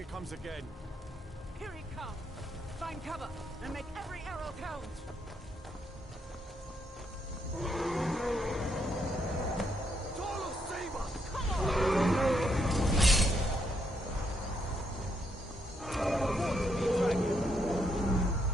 comes again. Here he comes! Find cover and make every arrow count! Tolo, save us! Come on!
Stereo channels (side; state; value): both; normal; correlation 0.76